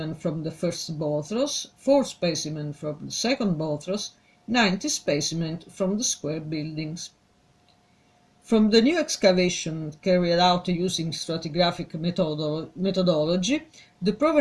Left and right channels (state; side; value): identical; both; correlation 1.00